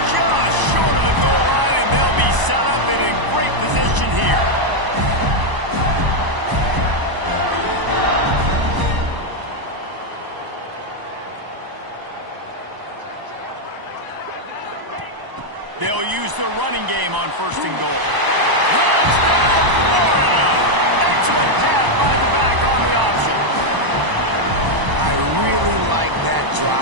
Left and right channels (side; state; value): left; late; 1.0 ms